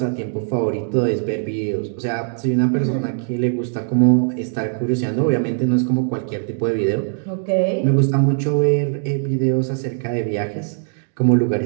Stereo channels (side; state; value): left; silent; digital silence